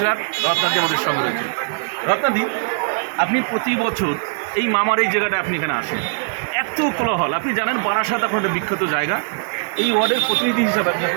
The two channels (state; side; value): silent; left; digital silence